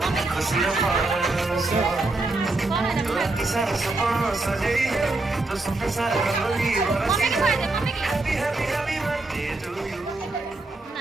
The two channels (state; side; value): quieter; left; 3.1 dB